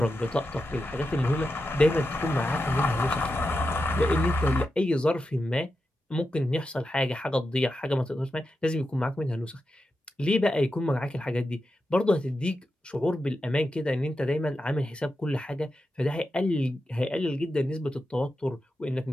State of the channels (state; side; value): normal; both; correlation 0.89